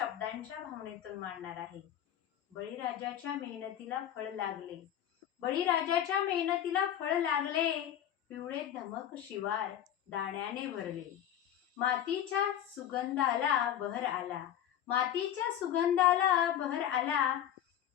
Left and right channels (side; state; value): right; quieter; 10.7 dB